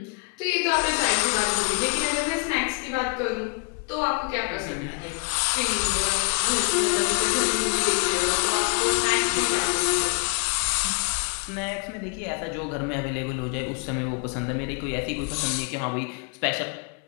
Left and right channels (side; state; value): right; quieter; 33.6 dB